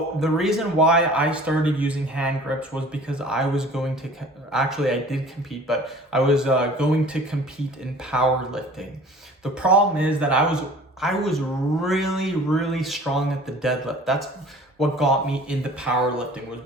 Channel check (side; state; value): both; normal; correlation 0.47